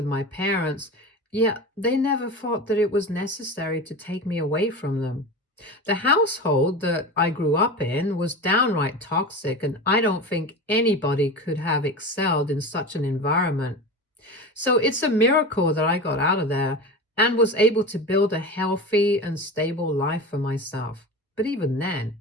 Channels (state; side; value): normal; both; correlation 0.29